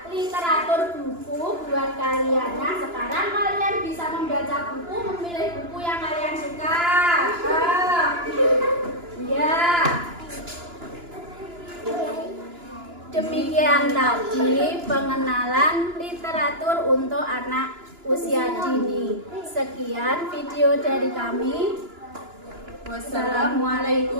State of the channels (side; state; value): left; late; 2.9 ms